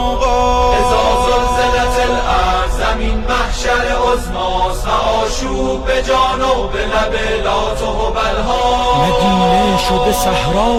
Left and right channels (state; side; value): identical; both; correlation 1.00